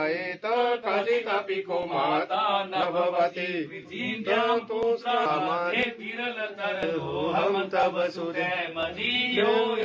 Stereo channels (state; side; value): identical; both; correlation 1.00